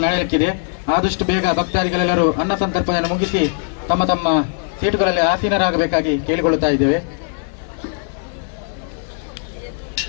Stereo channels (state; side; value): silent; right; 56 dB below the other